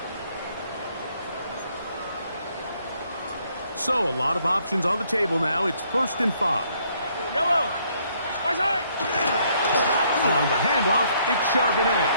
So a lot of options on the table now. It's 1st and 5. Yellow. On the handoff, it's Charbonnet.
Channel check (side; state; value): both; inverted; correlation -0.68